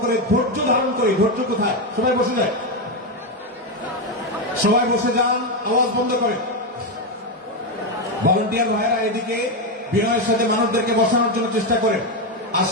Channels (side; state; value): both; normal; correlation 0.08